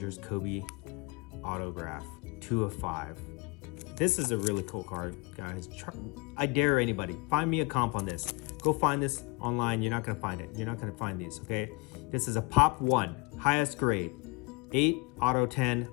Kobe autograph, 2 of 5. This is a really cool card, guys. I dare anybody, find me a comp on this. Go find this online. You're not gonna find it. You're not gonna find these, okay? This is a Pop 1, highest grade, 8 auto 10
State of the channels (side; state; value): right; quieter; 27.8 dB